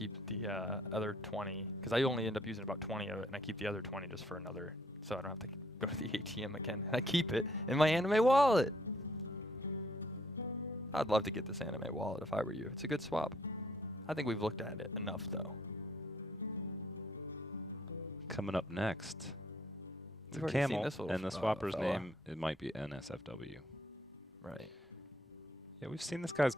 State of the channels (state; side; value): normal; both; correlation 0.66